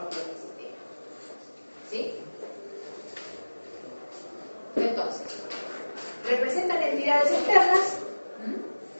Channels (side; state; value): both; inverted; correlation -1.00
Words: del sistema. ¿Sí? Entonces, representan entidades externas,